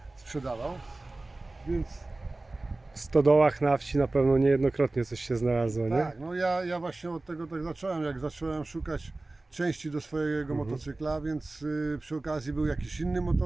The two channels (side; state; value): left; quieter; 3.0 dB